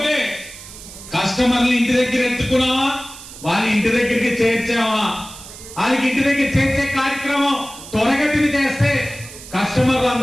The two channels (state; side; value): noise; right; hiss, 16 dB below the sound